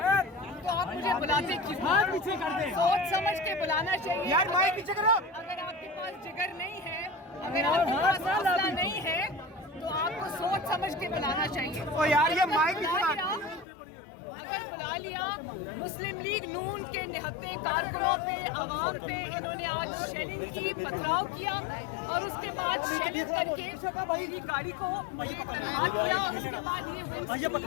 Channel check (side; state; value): right; drops out; at 13.7 s